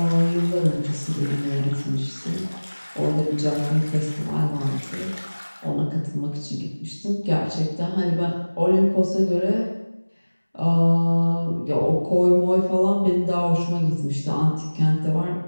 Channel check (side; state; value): both; inverted; correlation -1.00